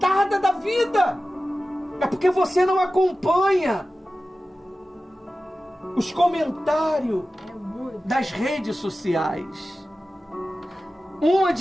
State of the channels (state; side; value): normal; both; correlation 0.95